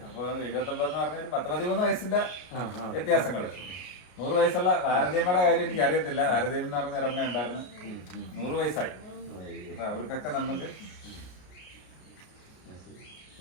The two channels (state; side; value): late; right; 33 ms